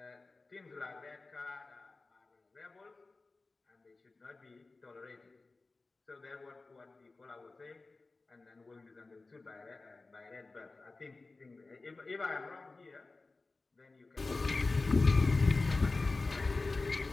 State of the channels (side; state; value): right; quieter; 3.6 dB